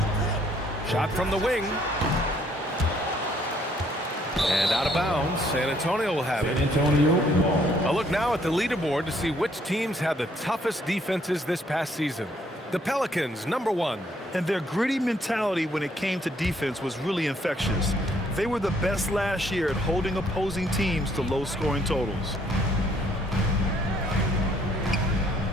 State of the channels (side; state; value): both; normal; correlation 0.66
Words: Shot from the wing. And out of bounds. San Antonio will have it. A look now at the leaderboard to see which teams had the toughest defenses this past season. The Pelicans, number 1. And their gritty mentality when it came to defense was really infectious. They were the best last year at holding opposing teams to low-scoring totals.